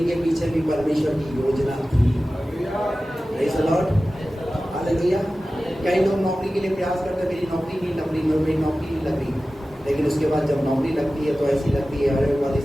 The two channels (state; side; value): normal; both; correlation 0.95